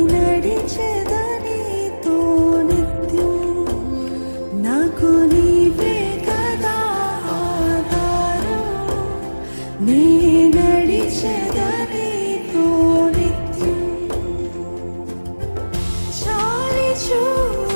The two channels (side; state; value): both; inverted; correlation -1.00